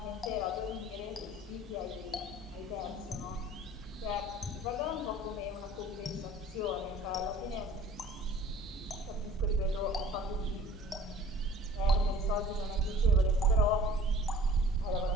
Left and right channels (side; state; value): both; normal; correlation 0.48